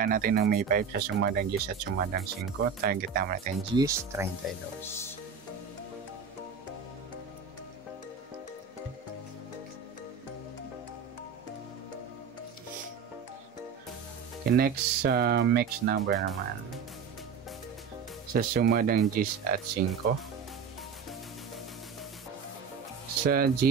natin ng May 5 sa sumadang Gis at sumadang 5. Target naman natin Gis, 32. Okay, next mix number naman sa sumadang Gis at 5. Sa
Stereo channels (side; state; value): left; quieter; 6.3 dB